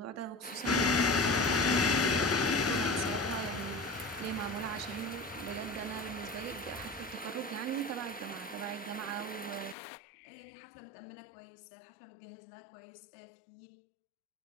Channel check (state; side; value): drops out; right; at 9.8 s